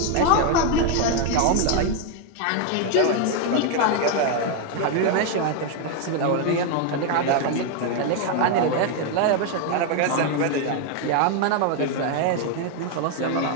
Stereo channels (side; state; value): both; different; correlation 0.01